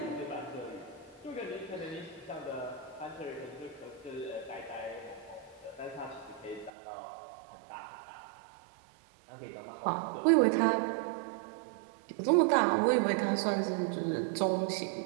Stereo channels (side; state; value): left; drops out; at 6.7 s